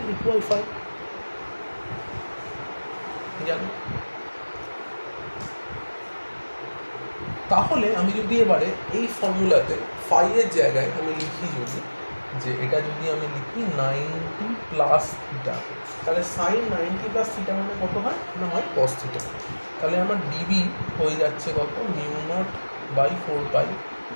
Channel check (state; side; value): inverted; both; correlation -1.00